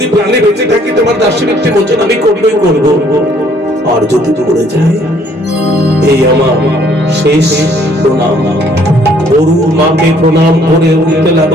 প্রাণে বেঁচে থাকি তোমার দাসবৃত্তি মোচন আমি করবই করবো, আর যদি মরে যাই এই আমার শেষ প্রণাম। গরু মাকে প্রণাম করে উঠতে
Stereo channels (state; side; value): normal; both; correlation 0.62